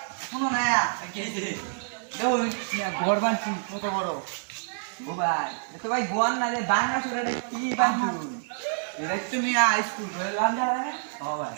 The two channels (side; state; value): left; silent; digital silence